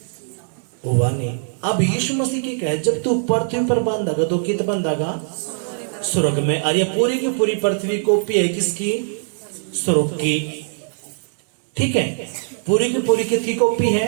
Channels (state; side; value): silent; left; digital silence